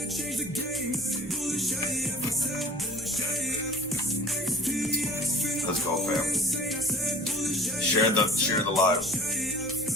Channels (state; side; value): normal; both; correlation 0.46